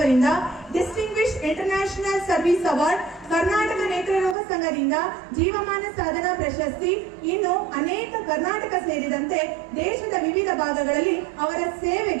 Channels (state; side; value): drops out; left; at 4.4 s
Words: distinguish international service award, Karnataka ನೇತ್ರರೋಗ ಸಂಘದಿಂದ ಜೀವಮಾನ ಸಾಧನಾ ಪ್ರಶಸ್ತಿ, ಇನ್ನು ಅನೇಕ ಕರ್ನಾಟಕ ಸೇರಿದಂತೆ ದೇಶದ ವಿವಿಧ ಭಾಗಗಳಲ್ಲಿ ಅವರ